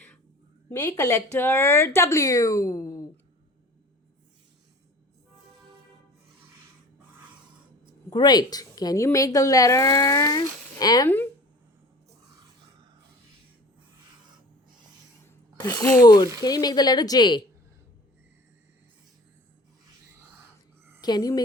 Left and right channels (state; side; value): normal; both; correlation 0.43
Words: Make a letter W. Great. Can you make the letter M? Good. Can you make the letter J? Can you